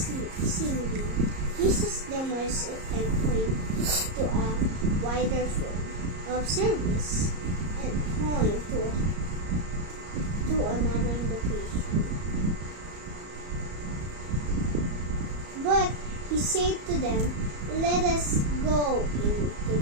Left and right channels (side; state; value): left; late; 34 ms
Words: Jesus demonstrated and pointed to a wider form of service and point to another location. But he said to them, "Let us go into